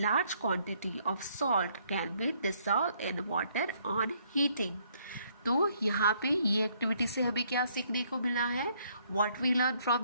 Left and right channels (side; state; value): both; inverted; correlation -0.68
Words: quantity of salt can be dissolved in water on heating. तो यहाँ पे ये एक्टिविटी से हमें क्या सीखने को मिला है? What we learn